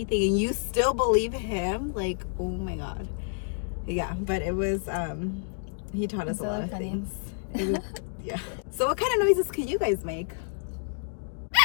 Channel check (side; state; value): right; silent; digital silence